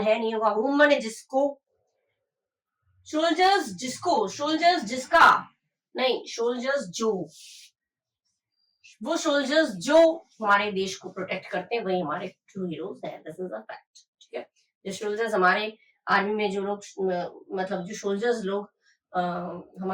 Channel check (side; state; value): both; identical; correlation 1.00